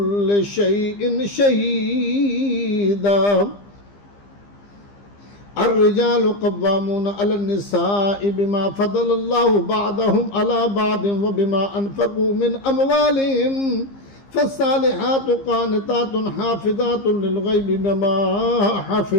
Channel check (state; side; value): late; right; 15 ms